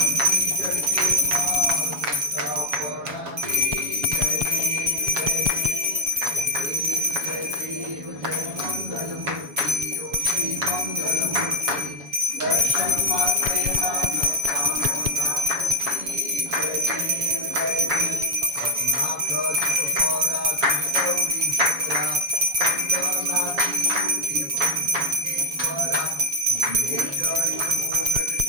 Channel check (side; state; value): left; late; 7.1 ms